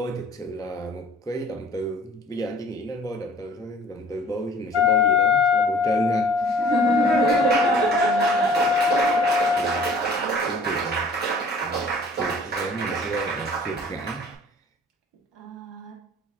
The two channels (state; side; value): normal; both; correlation 0.51